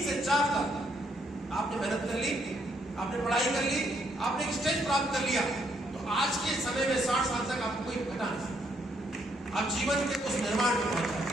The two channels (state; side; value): normal; both; correlation 0.73